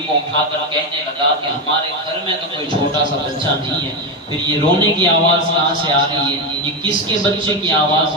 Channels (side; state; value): both; normal; correlation 0.11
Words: کو اٹھا کر کہنے لگا کہ ہمارے گھر میں تو کوئی چھوٹا سا بچہ نہیں ہے، پھر یہ رونے کی آواز کہاں سے آ رہی ہے؟ یہ کس کے بچے کی آواز